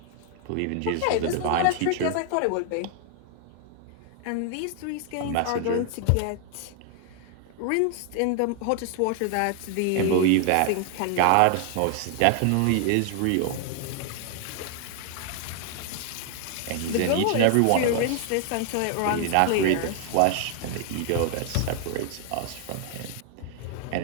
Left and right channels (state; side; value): different; both; correlation 0.00